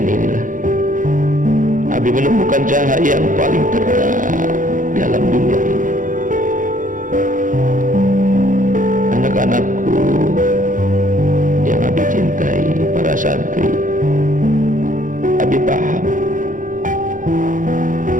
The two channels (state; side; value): late; left; 0.38 ms